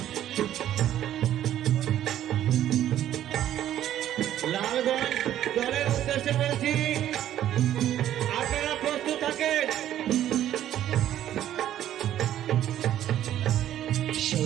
লালগঞ্জ দলের উদ্দেশ্যে বলছি আপনারা প্রস্তুত থাকেন।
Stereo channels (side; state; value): left; quieter; 11.8 dB